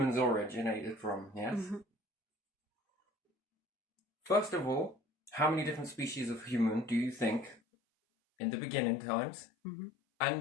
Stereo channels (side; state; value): right; drops out; at 7.6 s